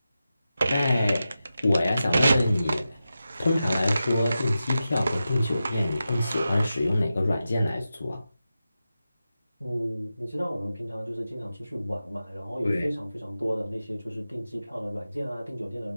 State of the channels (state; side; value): inverted; both; correlation -0.92